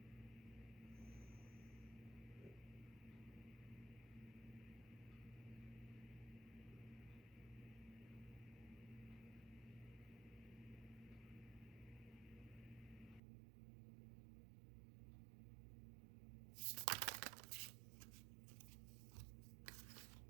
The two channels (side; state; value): left; drops out; at 13.2 s